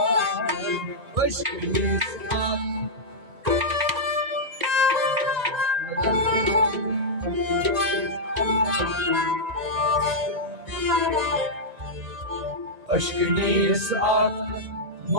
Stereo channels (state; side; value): late; left; 1.9 ms